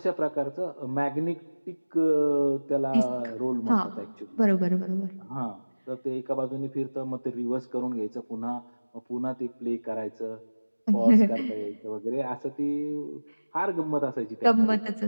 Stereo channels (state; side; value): inverted; both; correlation -1.00